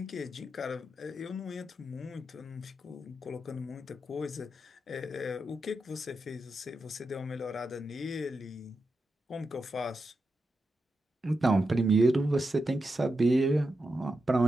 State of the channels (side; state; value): both; normal; correlation 0.88